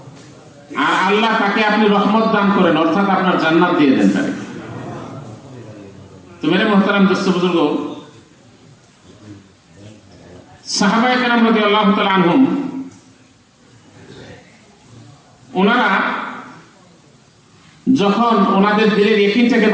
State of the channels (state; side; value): identical; both; correlation 1.00